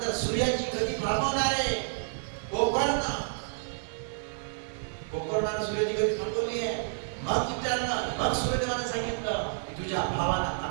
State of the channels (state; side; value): silent; left; digital silence